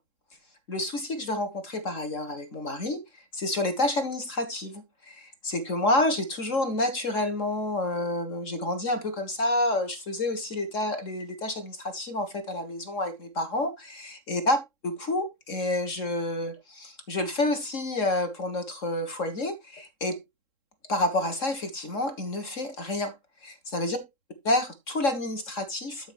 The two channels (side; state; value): right; late; 3.7 ms